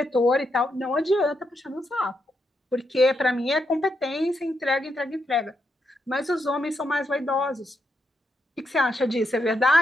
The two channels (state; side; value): normal; both; correlation 0.81